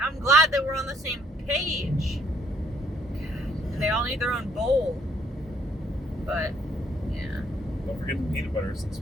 I'm glad that we're on the same page. God, they all need their own bowl. But, yeah. Don't forget the peanut butter since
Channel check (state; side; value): normal; both; correlation 0.66